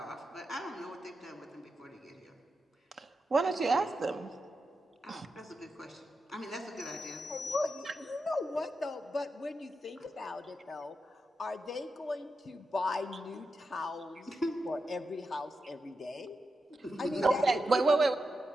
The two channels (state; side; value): normal; both; correlation 0.88